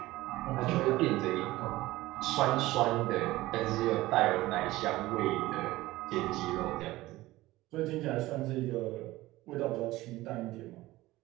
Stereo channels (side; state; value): left; quieter; 17.8 dB